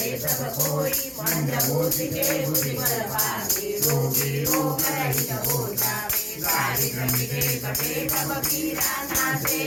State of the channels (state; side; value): identical; both; correlation 1.00